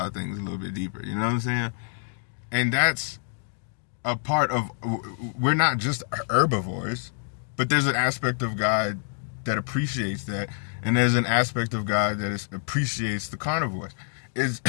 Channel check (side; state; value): right; silent; digital silence